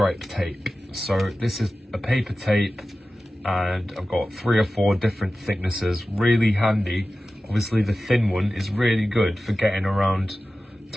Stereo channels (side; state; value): both; normal; correlation 0.95